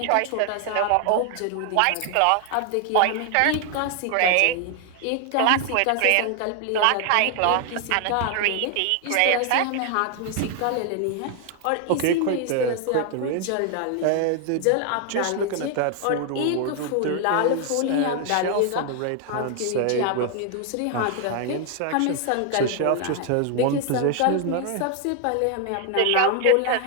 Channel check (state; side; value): different; both; correlation 0.00